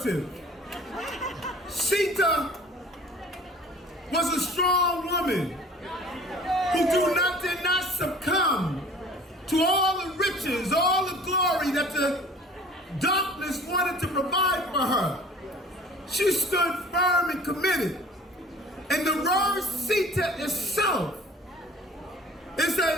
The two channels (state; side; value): normal; both; correlation 0.48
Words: Sita was a strong woman who did not succumb to all the riches, all the glory that the darkness wanted to provide for her. She stood firm and committed. And the word Sita itself is